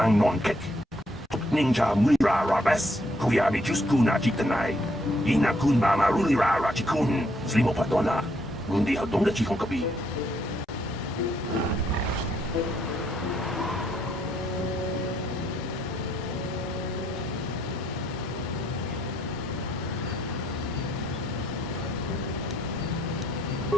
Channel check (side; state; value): both; normal; correlation 0.72